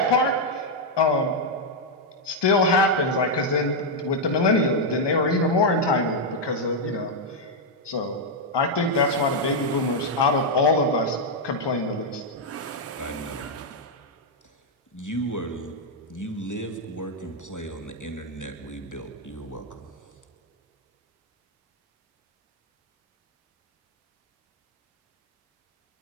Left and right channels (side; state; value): both; normal; correlation -0.02